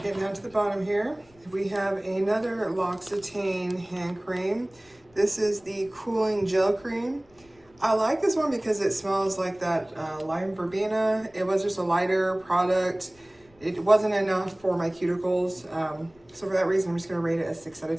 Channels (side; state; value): left; noise; rumble, 30 dB below the sound